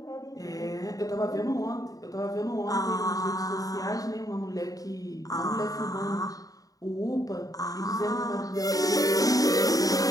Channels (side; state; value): right; late; 0.17 ms